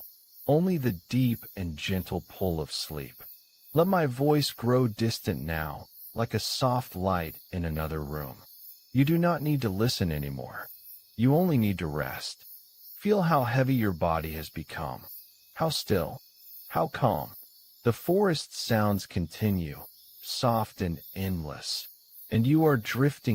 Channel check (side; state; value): both; identical; correlation 1.00